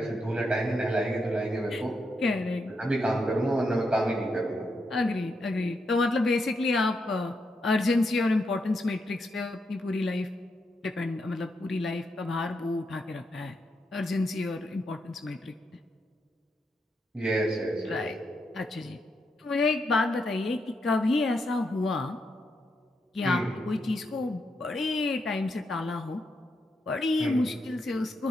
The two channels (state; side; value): normal; both; correlation 0.82